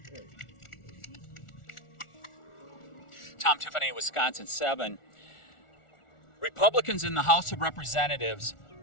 Tom Tiffany, Wisconsin 7. Republicans in the House of Representatives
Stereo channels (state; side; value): late; right; 1.4 ms